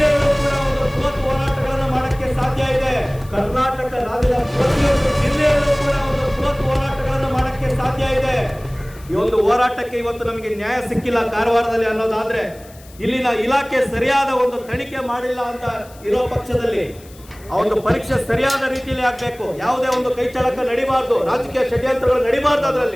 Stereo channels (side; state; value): left; noise; hiss, 24 dB below the sound